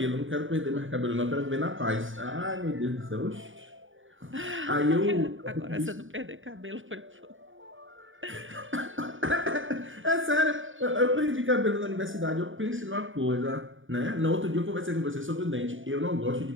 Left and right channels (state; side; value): late; left; 0.57 ms